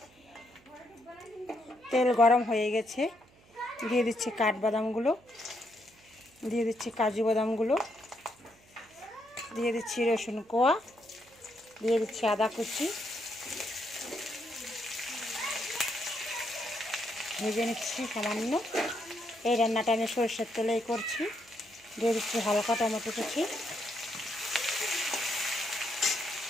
তেল গরম হয়ে গেছে, দিয়ে দিচ্ছি কাঠবাদামগুলো, দিয়ে দিচ্ছি কাজু বাদামগুলো, দিয়ে দিচ্ছি রসুন কোয়া, দিয়ে দিচ্ছি আদা কুচি, ভেজে নিচ্ছি সামান্য। এই রান্নাটা আমি সরষের তেলেই করছি। দিয়ে দিচ্ছি হালকা টমেটো কুচি,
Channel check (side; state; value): right; noise; hum, 28 dB below the sound